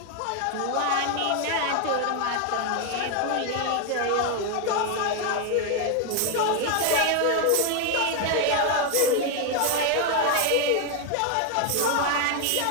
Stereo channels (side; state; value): both; different; correlation 0.01